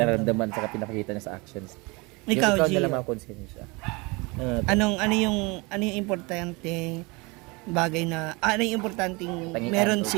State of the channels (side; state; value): left; quieter; 26.6 dB